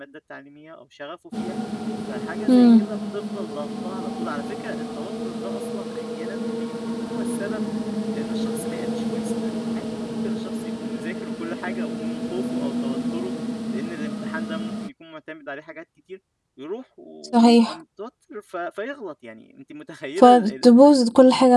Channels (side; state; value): both; identical; correlation 1.00